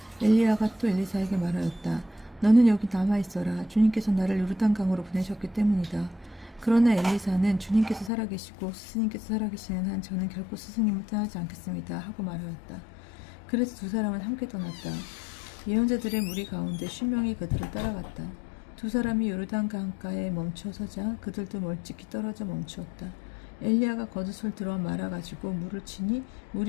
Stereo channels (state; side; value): drops out; right; at 8.1 s